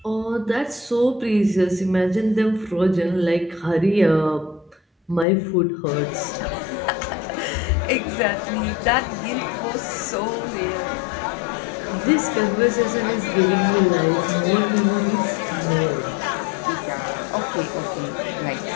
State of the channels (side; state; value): right; drops out; at 5.2 s